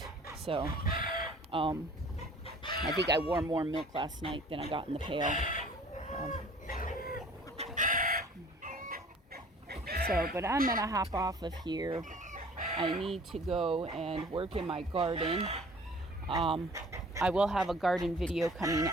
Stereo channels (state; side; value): normal; both; correlation 0.50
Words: So I think I wore more milk last night than I got in the pail. But I'm gonna hop off of here. I need to go and work in my garden. I will have a garden video coming